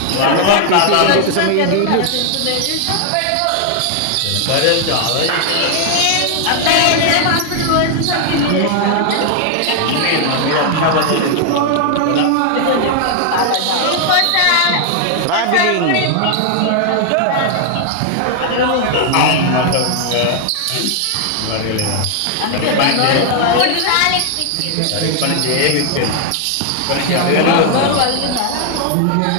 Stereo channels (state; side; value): different; both; correlation 0.00